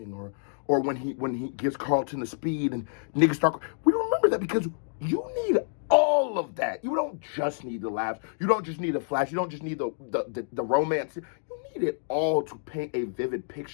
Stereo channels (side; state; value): right; silent; digital silence